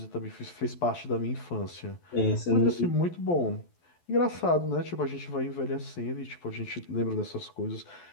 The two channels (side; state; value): right; late; 12 ms